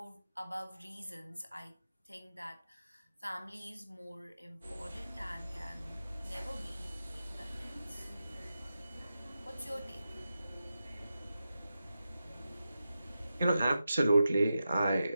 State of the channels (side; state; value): both; inverted; correlation -0.90